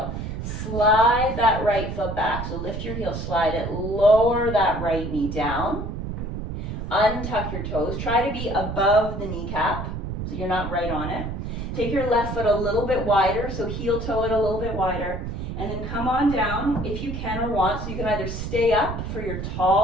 Slide that right foot back. So lift your heel, slide it, lower that right knee down. Untuck your toes. Try to be above the kneecap so you're not right on it. Take your left foot a little bit wider, so heel toe it a little bit wider. And then come on down if you can or want. So you can either stay up for your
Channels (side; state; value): right; noise; rumble, 5 dB below the sound